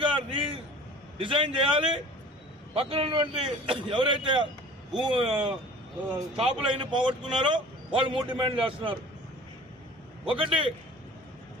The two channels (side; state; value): both; normal; correlation 0.45